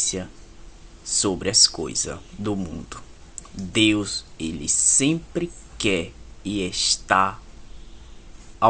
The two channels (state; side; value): identical; both; correlation 1.00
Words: sobre as coisas do mundo. Deus, ele sempre quer e está